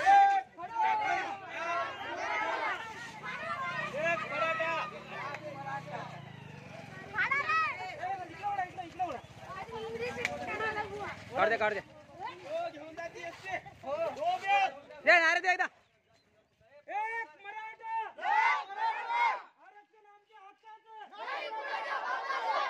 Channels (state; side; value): identical; both; correlation 1.00